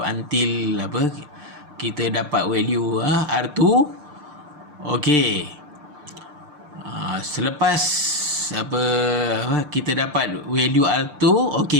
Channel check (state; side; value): late; left; 6.7 ms